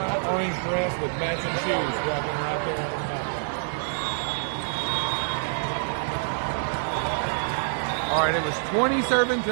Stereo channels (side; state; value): left; silent; digital silence